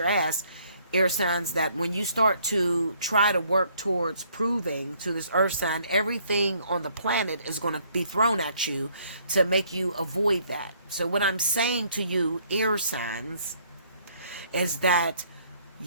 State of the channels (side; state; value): both; inverted; correlation -0.64